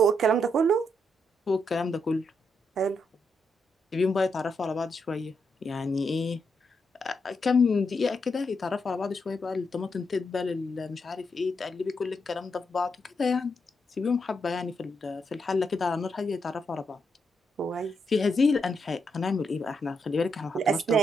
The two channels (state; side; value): normal; both; correlation 0.80